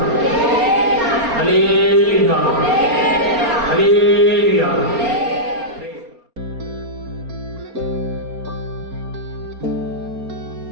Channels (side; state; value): left; late; 4.3 ms